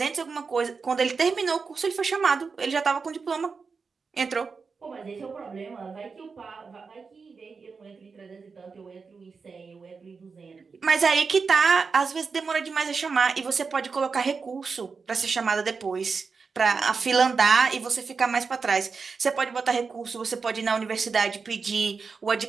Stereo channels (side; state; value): left; quieter; 5.0 dB